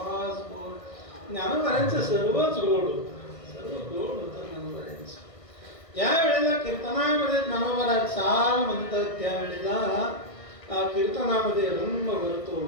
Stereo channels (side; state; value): right; late; 1.5 ms